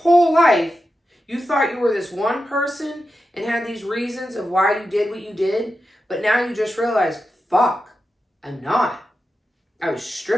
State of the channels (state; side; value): normal; both; correlation 0.90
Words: life, you thought you were this one person and had these reasons of why you did what you did. But now you just realize, fuck, I'm not. I was